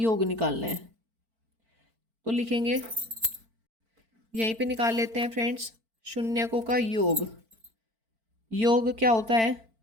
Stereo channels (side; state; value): left; late; 4.5 ms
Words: निकालना है। तो लिखेंगे, यहीं पे निकाल लेते हैं फ्रेंड्स, शून्यकों का योग। योग क्या होता है